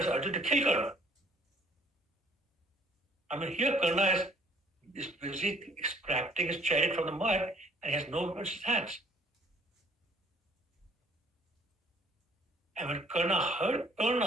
Arjuna to kill Karna. I mean, here Karna is busy extracting his chariot from the mud and he has no weapons in his hands. And when Karna heard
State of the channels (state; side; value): normal; both; correlation 0.59